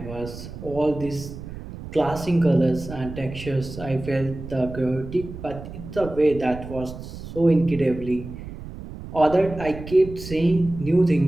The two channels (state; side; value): noise; right; rumble, 12 dB below the sound